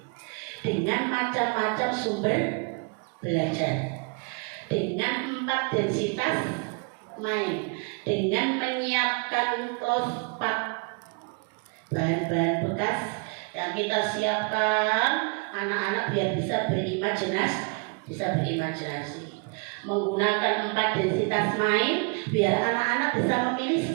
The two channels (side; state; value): left; quieter; 34.8 dB